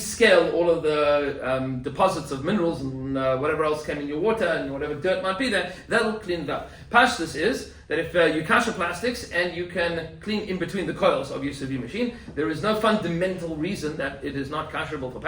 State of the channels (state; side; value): identical; both; correlation 1.00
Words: all of the deposits of minerals and whatever else came in your water and whatever dirt might be there. That'll clean it up. Pashtus is that if you kasher plastics and you can clean in between the coils of your sous vide machine, there is no fundamental reason that it is not kasherable for